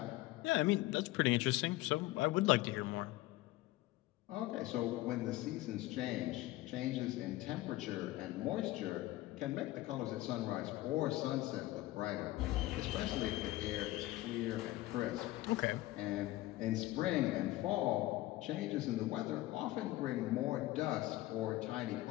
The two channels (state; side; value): quieter; right; 17.3 dB